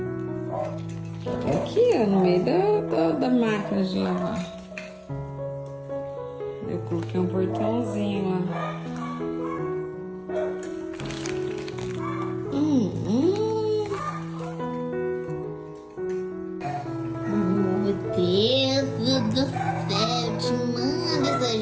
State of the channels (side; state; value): both; identical; correlation 1.00